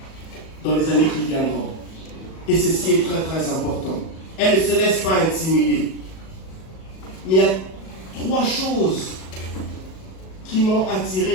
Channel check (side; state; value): right; late; 37 ms